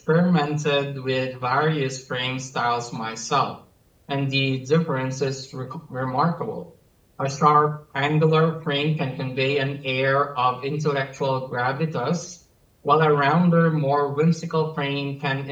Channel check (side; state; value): both; identical; correlation 1.00